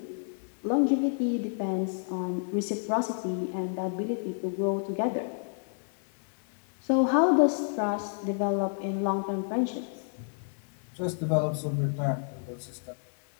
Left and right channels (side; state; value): right; silent; digital silence